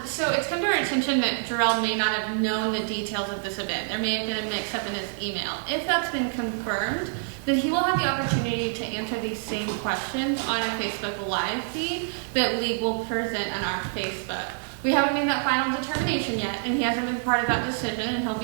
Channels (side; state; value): left; silent; digital silence